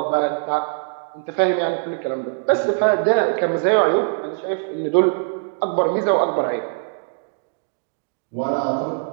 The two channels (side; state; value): left; silent; digital silence